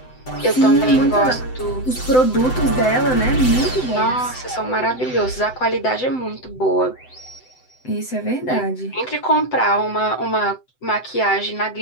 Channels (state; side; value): late; right; 7.9 ms